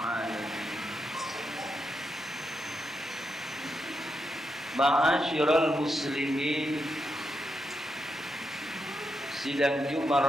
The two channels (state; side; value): normal; both; correlation 0.84